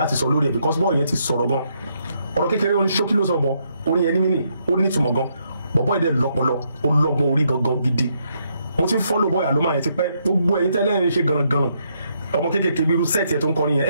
sọ lórí ẹ̀ because bọ́ọ̀ yẹn ti sọ̀rọ̀ gan ọ̀rọ̀ kékeré orin ṣókí ló sọ bọ̀ orin yẹn ní mínì ó ní ìtumọ̀ gan bọ̀bọ́ ẹ̀dẹ̀ lọ́pọlọ ó lọ́gbọ́n orí gangan gidi mo ti ń fọ́lọ̀ bọ́ọ̀ Aloma yẹn ti pẹ́ gbogbo ẹ̀yin tẹ́lẹ̀ ń ṣe gànàgànà ọmọ kékeré bí irú sẹ́ẹ̀tì ẹ̀ tó ń kọrin yẹn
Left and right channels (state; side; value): inverted; both; correlation -0.75